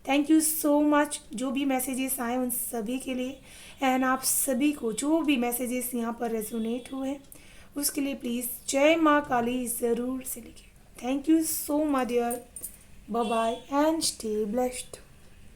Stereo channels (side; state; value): both; identical; correlation 1.00